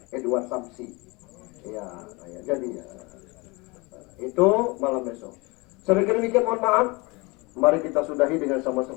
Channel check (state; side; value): quieter; right; 26.3 dB